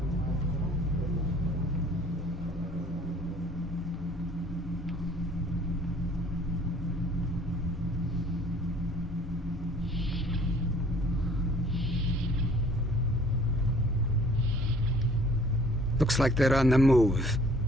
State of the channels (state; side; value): normal; both; correlation 0.55